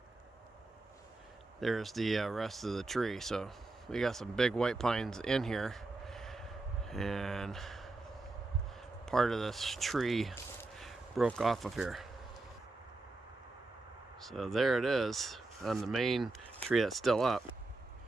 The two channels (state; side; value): quieter; left; 3.2 dB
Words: rest of the tree. So we got some big white pines in here, and part of this tree broke off of here. So there it is on the main tree that's still up.